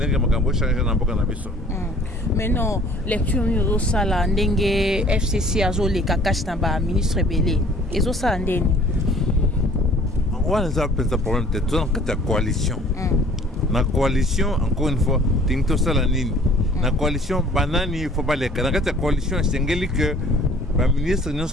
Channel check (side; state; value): both; normal; correlation 0.53